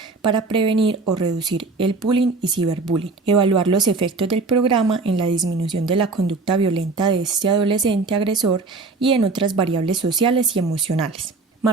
para prevenir o reducir el bullying y ciberbullying, evaluar los efectos del programa en la disminución de la conducta violenta de este adolescente agresor y en otras variables sociales y emocionales.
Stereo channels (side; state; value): left; quieter; 3.9 dB